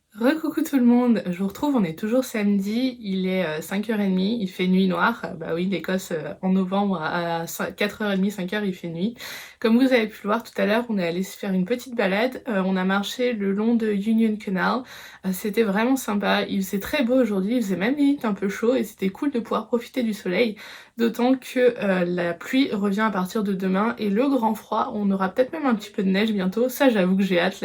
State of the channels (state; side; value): identical; both; correlation 1.00